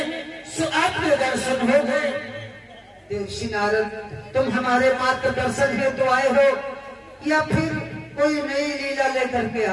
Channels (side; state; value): both; identical; correlation 1.00